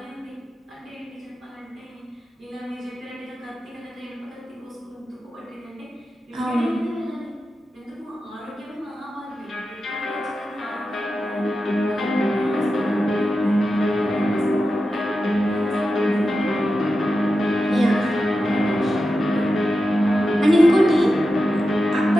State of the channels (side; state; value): both; normal; correlation 0.91